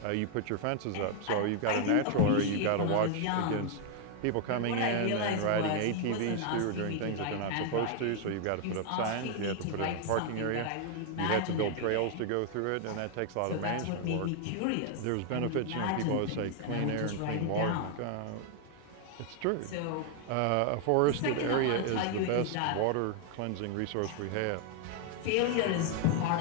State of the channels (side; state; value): both; different; correlation 0.00